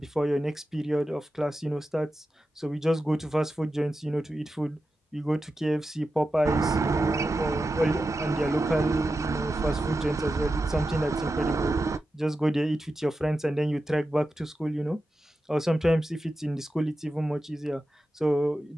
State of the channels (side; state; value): both; normal; correlation 0.91